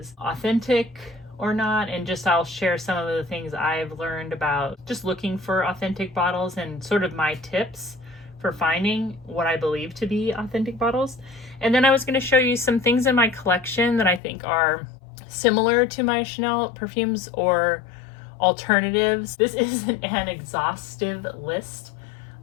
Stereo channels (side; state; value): right; drops out; at 14.2 s